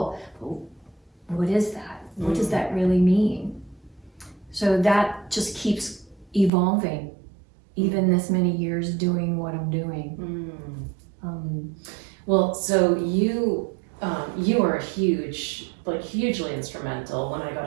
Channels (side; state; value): left; drops out; at 6.5 s